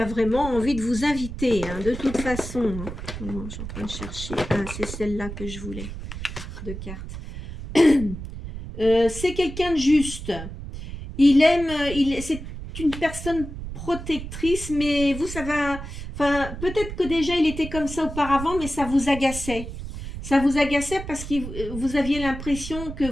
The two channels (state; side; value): noise; right; rumble, 9 dB below the sound